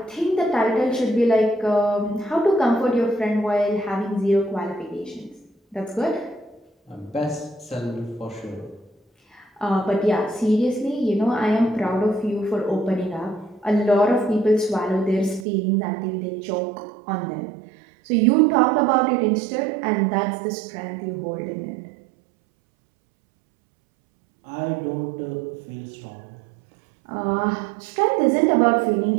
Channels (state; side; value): drops out; left; at 15.5 s